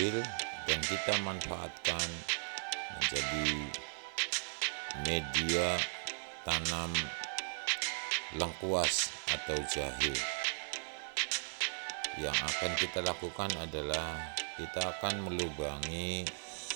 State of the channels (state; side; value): silent; left; 53 dB below the other